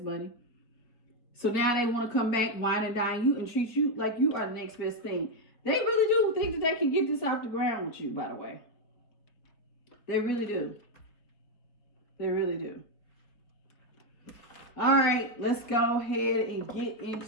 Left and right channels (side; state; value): right; late; 4.3 ms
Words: money. So now they want to come back, wine and dine you, and treat you like you are the next best thing. They really do think that they can get this off the ground with you, by the way. They really do. They really do. All right, let's go ahead and get